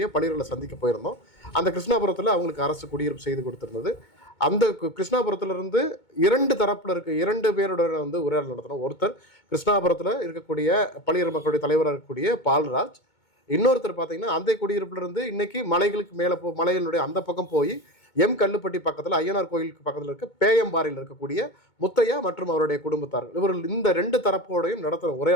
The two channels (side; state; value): right; late; 2.2 ms